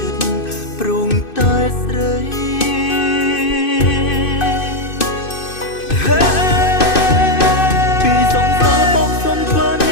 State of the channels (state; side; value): late; right; 2.6 ms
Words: ិត្តព្រមតែស្រីពីសង្សារបងសុំធ្វើអ